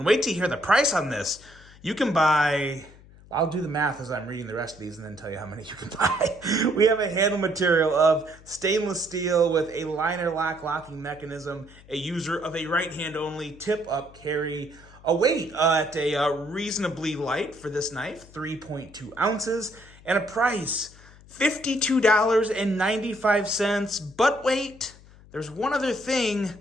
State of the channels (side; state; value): left; noise; hum, 23 dB below the sound